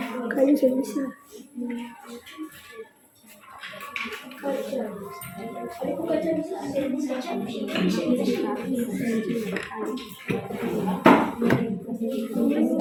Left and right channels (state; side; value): identical; both; correlation 1.00